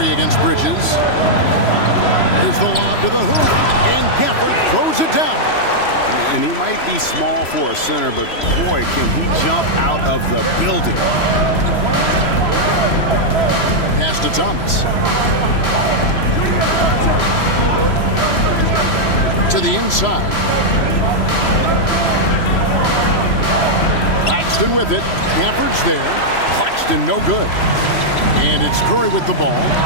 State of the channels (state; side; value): late; right; 3.0 ms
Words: against Bridges. Here's the lob to the hoop. And Gafford throws it down. And he might be small for a center, but boy, can he jump out of the building. Pass to Thomas. To the inside. Claxton with it. Gafford's there. Claxton no good. And it's Curry with the ball,